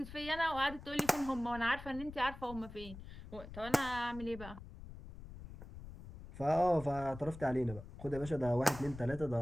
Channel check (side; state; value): left; noise; rumble, 14 dB below the sound